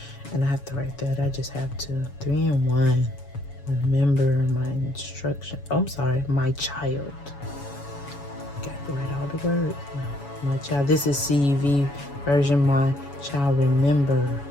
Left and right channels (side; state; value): right; late; 7.1 ms